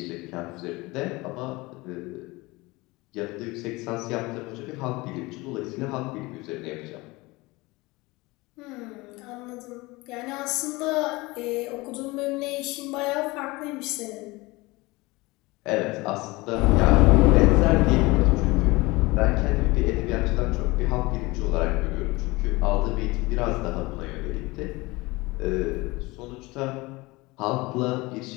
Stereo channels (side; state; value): right; quieter; 22.5 dB